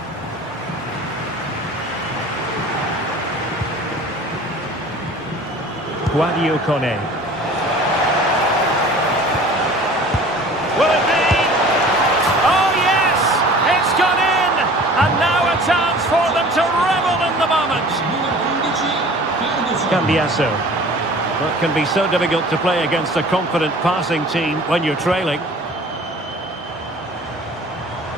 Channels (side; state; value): both; normal; correlation 0.45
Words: Guadio Kone. Will it be? Oh yes! It's gone in! And now a chance for them to revel in the moment. Cambiasso. That can be so difficult to play against a confident passing team when you're trailing.